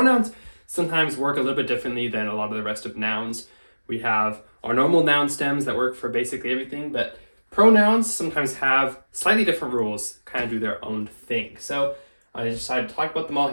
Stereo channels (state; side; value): inverted; both; correlation -1.00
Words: sometimes work a little bit differently than a lot of the rest of nouns. We have our normal noun stems that work for basically everything, but pronouns sometimes have slightly different rules, kind of do their own thing. So I decided to talk about them all